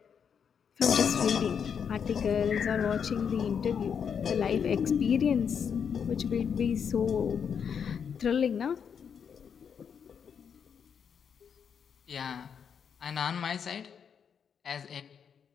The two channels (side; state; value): right; quieter; 7.2 dB